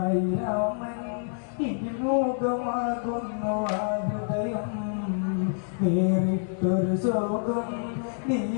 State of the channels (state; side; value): silent; right; digital silence